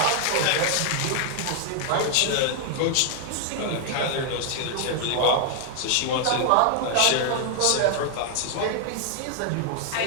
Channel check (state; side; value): different; both; correlation 0.00